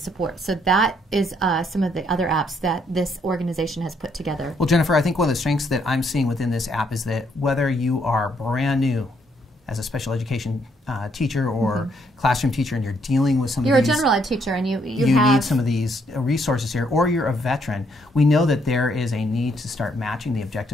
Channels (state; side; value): normal; both; correlation 0.71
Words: So that is some of the other apps that this organization has put together. Well, Jennifer, I think one of the strengths that I'm seeing within this app is that whether you are brand new as a special education teacher or classroom teacher and you're dealing with some You're of these... a general ed teacher and you have need some of these resources here, or you're a veteran, we know that there is a need to start matching the